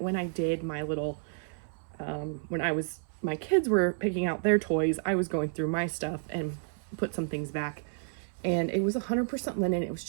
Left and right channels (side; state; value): left; silent; 57 dB below the other